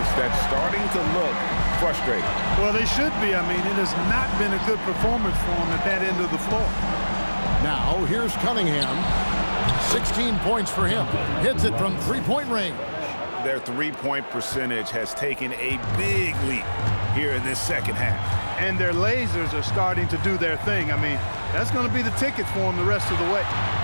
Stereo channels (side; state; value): both; inverted; correlation -1.00